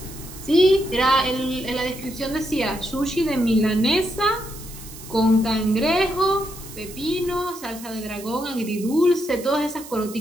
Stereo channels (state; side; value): noise; right; hiss, 15 dB below the sound